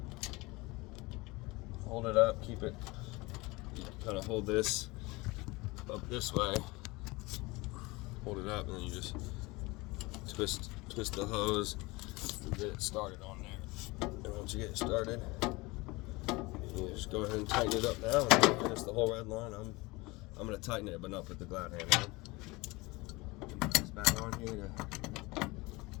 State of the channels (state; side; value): quieter; right; 23.3 dB